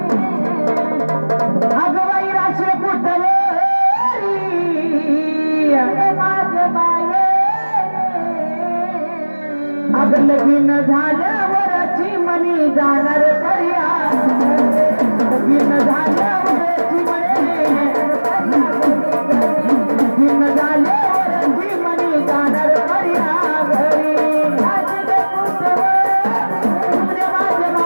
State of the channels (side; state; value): both; inverted; correlation -1.00